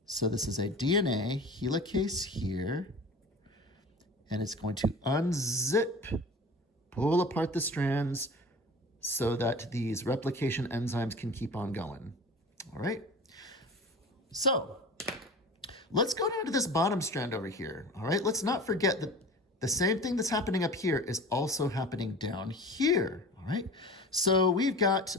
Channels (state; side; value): normal; both; correlation 0.37